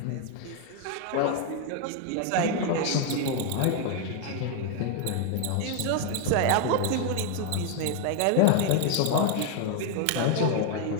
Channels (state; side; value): different; both; correlation 0.01